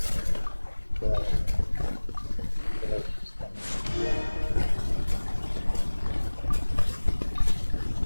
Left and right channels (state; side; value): inverted; both; correlation -1.00